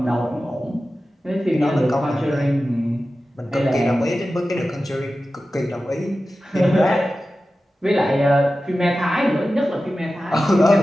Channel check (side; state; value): both; normal; correlation 0.94